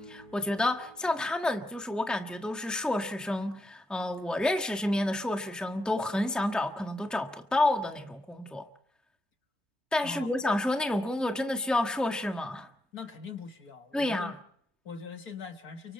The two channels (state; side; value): normal; both; correlation 0.85